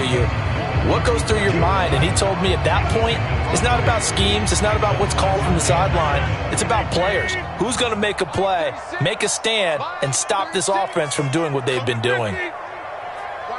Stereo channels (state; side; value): identical; both; correlation 1.00